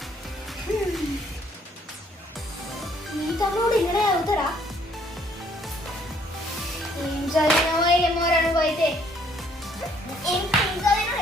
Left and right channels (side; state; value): both; normal; correlation 0.63